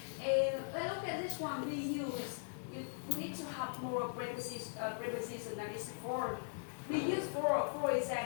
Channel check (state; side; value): silent; right; digital silence